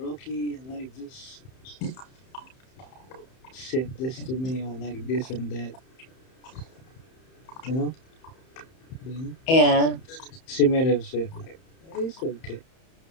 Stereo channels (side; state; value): right; late; 31 ms